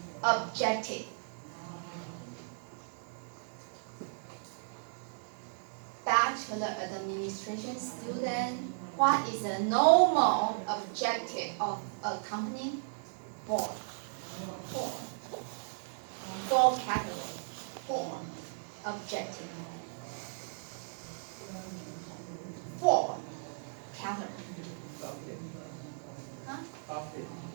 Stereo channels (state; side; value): silent; left; digital silence